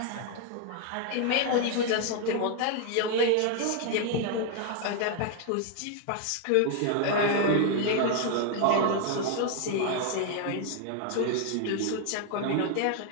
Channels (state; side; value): different; both; correlation 0.00